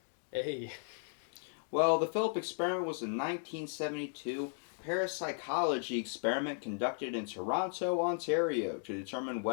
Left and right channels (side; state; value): right; silent; 54 dB below the other